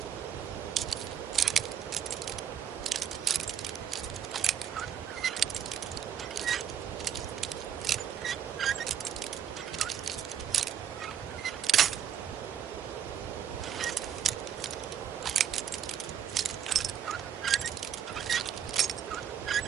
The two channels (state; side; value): quieter; left; 8.9 dB